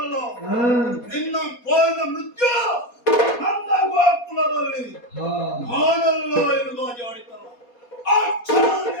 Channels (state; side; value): late; right; 4.2 ms